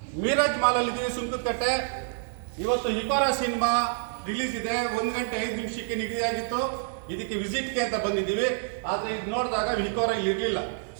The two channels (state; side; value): silent; left; digital silence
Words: ಮೀರಾಜ್ ಮಾಲಲ್ಲಿದ್ದೀವಿ, ಸುಂಕದಕಟ್ಟೆ. ಇವತ್ತು ಹಿಕೋರಾ ಸಿನಿಮಾ ರಿಲೀಸ್ ಇದೆ. 1 ಗಂಟೆ 5 ನಿಮಿಷಕ್ಕೆ ನಿಗದಿಯಾಗಿತ್ತು. ಇದಕ್ಕೆ ವಿಸಿಟ್ಗೆ ಅಂತ ಬಂದಿದ್ದೀವಿ. ಆದರೆ ಇದು ನೋಡಿದಾಗ ಹಿಕೋರಾ ಇಲ್ಲಿ ಇರಲಿಲ್ಲ.